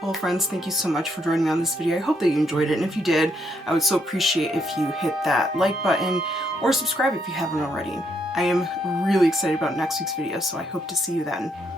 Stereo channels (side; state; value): both; normal; correlation 0.75